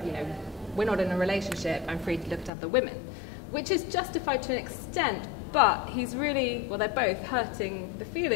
You know, we're not in a relationship, I'm free to look at other women, which is justified to an extent, but he's really, well, they're both hurting the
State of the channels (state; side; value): drops out; right; at 2.5 s